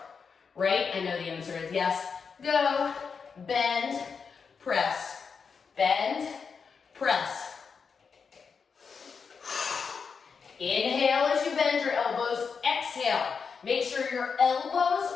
right? I know the answer is yes. Go, bend, press, bend, press. Inhale as you bend your elbows, exhale. Make sure your elbows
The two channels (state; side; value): quieter; right; 5.7 dB